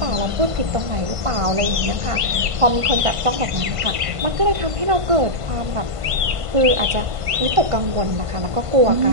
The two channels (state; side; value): late; left; 1.5 ms